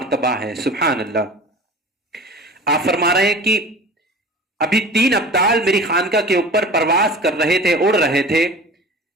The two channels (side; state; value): both; normal; correlation 0.39